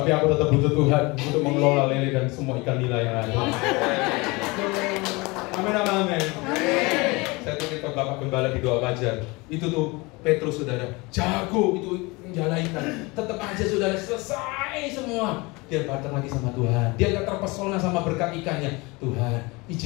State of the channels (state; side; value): quieter; right; 25.0 dB